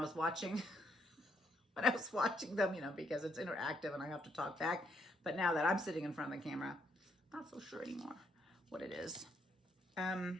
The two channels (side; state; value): both; normal; correlation 0.73